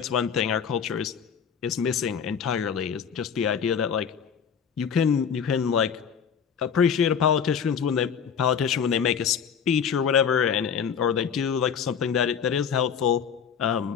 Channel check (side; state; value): right; quieter; 7.3 dB